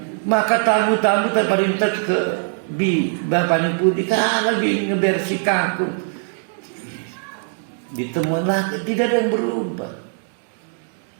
Maka tamu-tamu terperintas ke bapaknya putih, kalau dia ngebersih kangkung. Ditemukan lagi, tidak ada yang berubah.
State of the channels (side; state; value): left; silent; 59 dB below the other